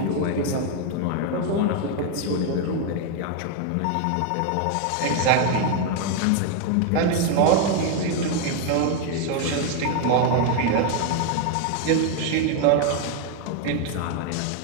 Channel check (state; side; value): different; both; correlation 0.01